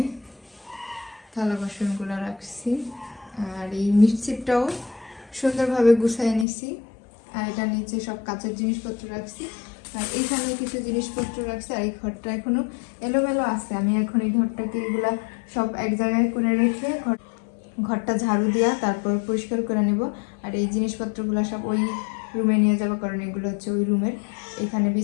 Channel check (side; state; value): right; drops out; at 6.5 s